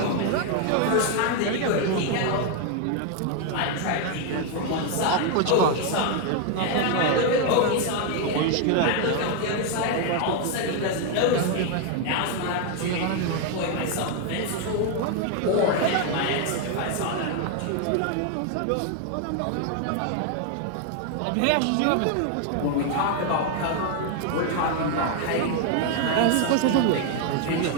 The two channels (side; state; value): both; different; correlation 0.01